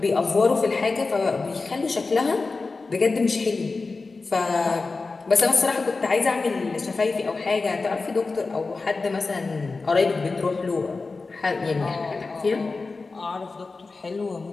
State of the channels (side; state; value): right; quieter; 3.9 dB